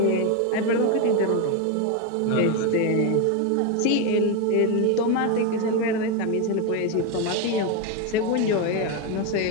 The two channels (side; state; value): both; different; correlation 0.02